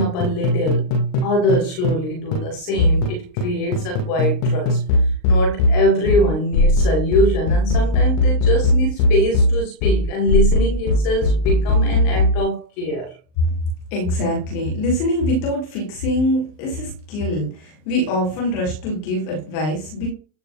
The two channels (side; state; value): right; late; 39 ms